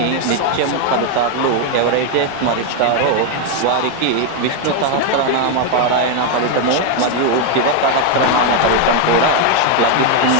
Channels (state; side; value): different; both; correlation 0.01